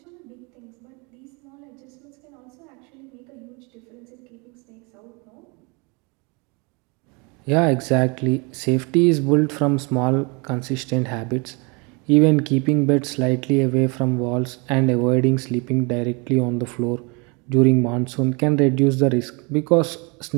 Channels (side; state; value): left; quieter; 30.4 dB